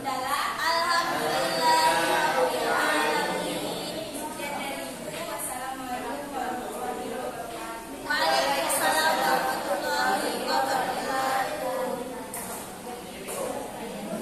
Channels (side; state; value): both; identical; correlation 1.00